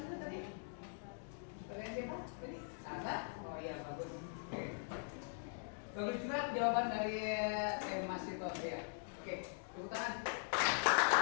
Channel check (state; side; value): silent; right; digital silence